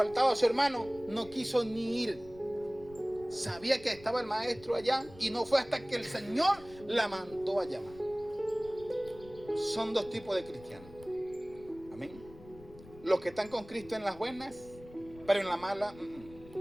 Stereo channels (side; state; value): left; noise; rumble, 20 dB below the sound